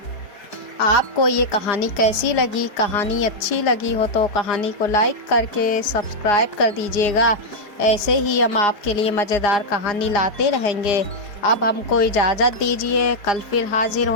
आपको ये कहानी कैसी लगी? कहानी अच्छी लगी हो तो कहानी को लाइक करके सब्सक्राइब कर दीजिएगा। ऐसे ही हम आपके लिए मज़ेदार कहानी लाते रहेंगे। अब हमको इजाज़त दीजिए, कल फिर हाजिर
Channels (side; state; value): right; late; 4.9 ms